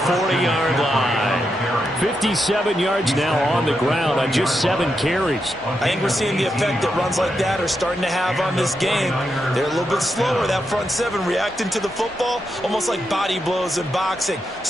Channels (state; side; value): normal; both; correlation 0.85